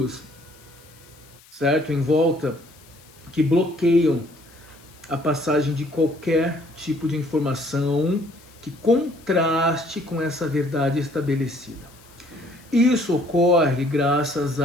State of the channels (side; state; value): left; noise; hiss, 26 dB below the sound